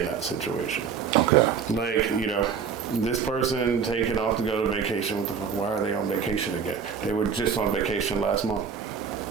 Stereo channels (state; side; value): quieter; left; 6.6 dB